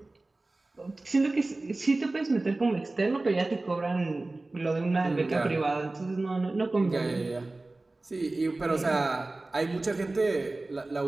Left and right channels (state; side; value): quieter; left; 3.0 dB